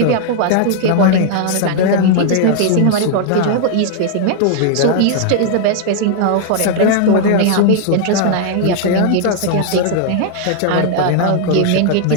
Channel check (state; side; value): different; both; correlation 0.00